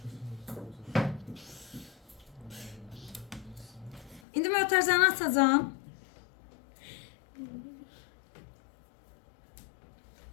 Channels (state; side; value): drops out; right; at 4.2 s